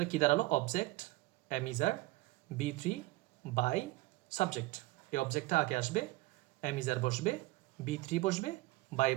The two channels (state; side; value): quieter; left; 20.1 dB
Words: কী দাঁড়ালো, object am, is, are, B3 by subject. এই অবজেক্টটা আগে আসবে, এম, ইজ, আর বসবে, B3 বসবে, বাই